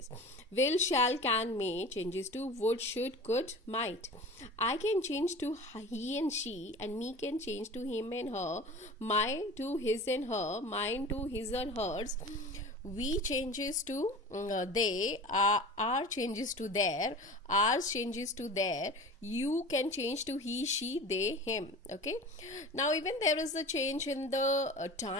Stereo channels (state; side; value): normal; both; correlation 0.37